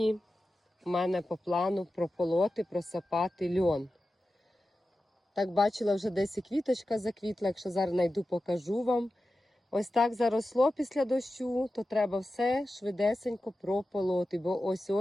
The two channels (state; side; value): normal; both; correlation 0.93